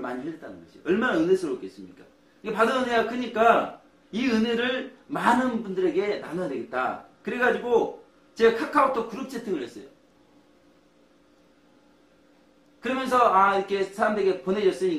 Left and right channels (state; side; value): identical; both; correlation 1.00